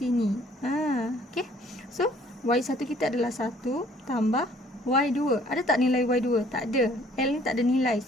Okay. So Y1 kita adalah 1 tambah Y2. Ada tak nilai Y2? Tak ada. L ni tak ada nilai.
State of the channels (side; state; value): both; normal; correlation 0.59